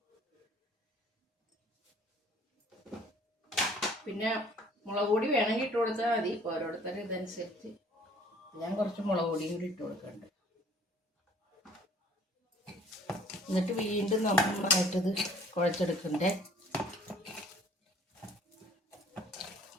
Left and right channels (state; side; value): normal; both; correlation 0.55